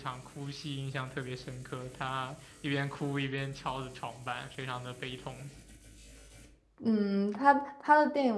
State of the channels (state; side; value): identical; both; correlation 1.00